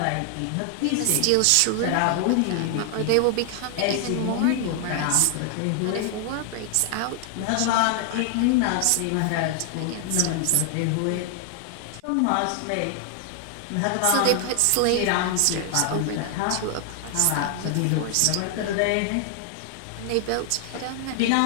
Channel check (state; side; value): different; both; correlation 0.00